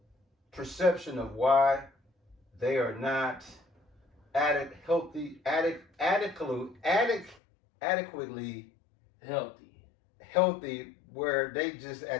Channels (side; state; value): right; drops out; at 7.4 s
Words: perception of why they are not adequately healthy, where they just